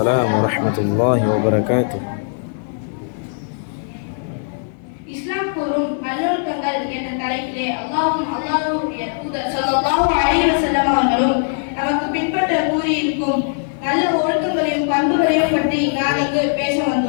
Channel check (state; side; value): silent; right; 66 dB below the other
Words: வரஹ்மத்துல்லாஹி வபரகாத்துஹு. இஸ்லாம் கூறும் நல்லொழுக்கங்கள் என்ற தலைப்பிலே அல்லாஹ்வுடைய தூதர் ஸல்லல்லாஹு அலைஹி வஸல்லம் அவர்களும் நமக்கு பின்பற்ற கூறியிருக்கும் நல்ல ஒழுக்கங்களையும் பண்புகளையும் பற்றி நான் இங்கு பேச